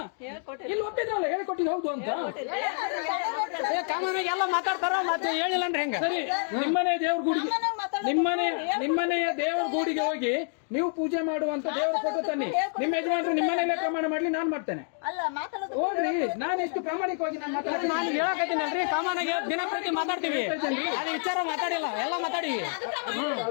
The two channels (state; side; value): silent; right; 59 dB below the other